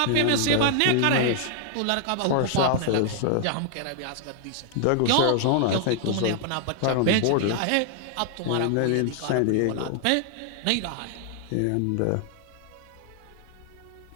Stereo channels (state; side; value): different; both; correlation 0.00